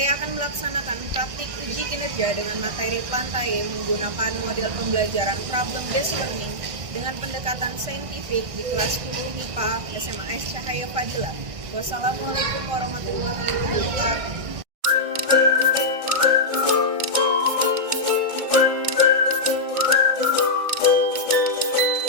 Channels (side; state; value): left; late; 1.6 ms